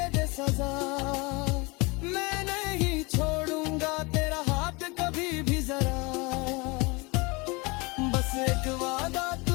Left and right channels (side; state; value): right; quieter; 26.7 dB